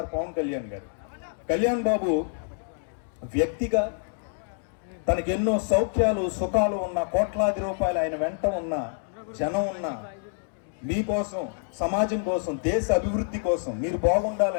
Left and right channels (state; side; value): silent; right; digital silence